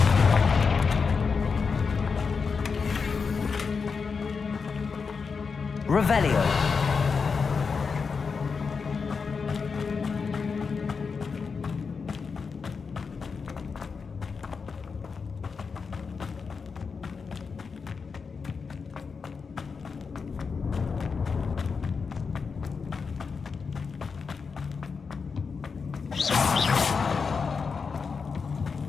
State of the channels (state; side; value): quieter; right; 5.3 dB